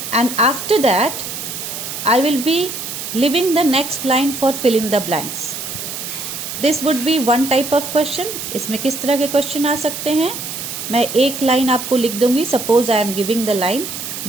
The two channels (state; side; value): noise; right; hiss, 7 dB below the sound